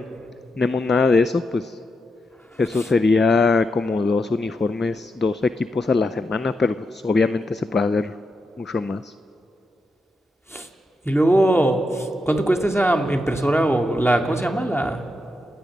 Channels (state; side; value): normal; both; correlation 0.85